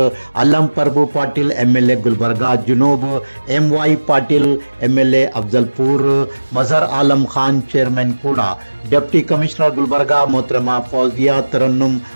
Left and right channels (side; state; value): both; inverted; correlation -1.00